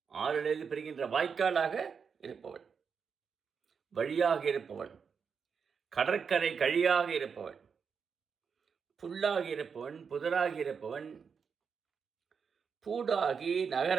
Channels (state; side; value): quieter; left; 6.2 dB